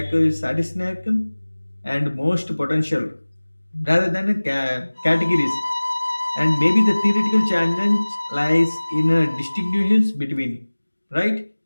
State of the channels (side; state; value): both; inverted; correlation -1.00